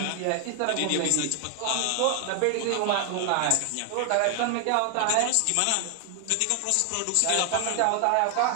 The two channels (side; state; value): both; different; correlation 0.00